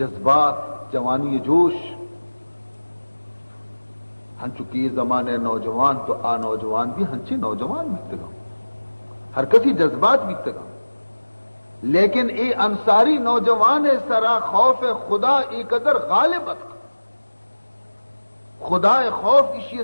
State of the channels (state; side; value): inverted; both; correlation -1.00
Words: جوانی جوش ہنچکی زمانے نوجوان تو آ نوجوان بھی ہنچی نوجوان بیتے گا، ہر کسی جذبات بیتے گا، لیکن ای انصاری نوجوان سرا خوف خدا ای قدر غالب اتک، خدا خوف اسی